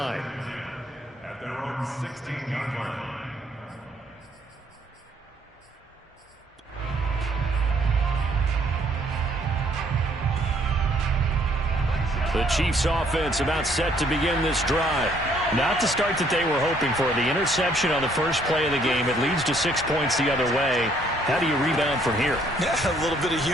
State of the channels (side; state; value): both; normal; correlation 0.65